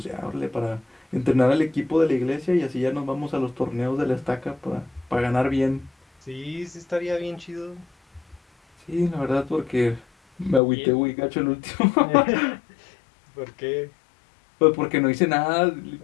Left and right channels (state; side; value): drops out; right; at 10.6 s